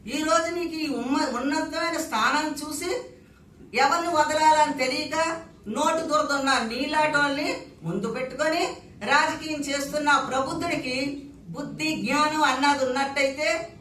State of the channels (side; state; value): both; identical; correlation 1.00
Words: ఈ రోజు నీకు ఈ ఉన్నతమైన స్థానం చూసి ఎవరిని వదలాలని తెలియక నోటు దురదున్న నీలాటోల్ని ముందు పెట్టుకొని రాజకీయం చేస్తున్న ప్రబుద్ధుడికి బుద్ధి జ్ఞానం అన్నది ఉన్నట్టయితే,